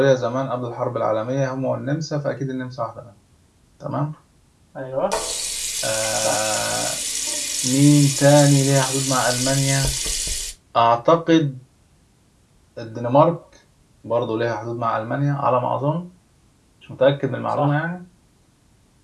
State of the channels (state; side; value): identical; both; correlation 1.00